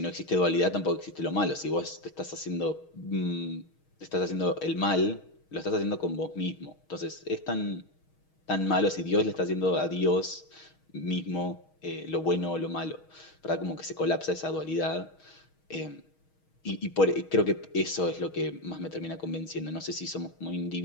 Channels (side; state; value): right; late; 6.3 ms